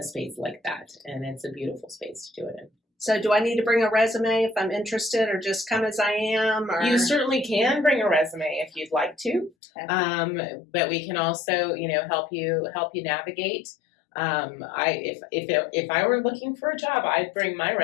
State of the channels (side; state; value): right; drops out; at 9.6 s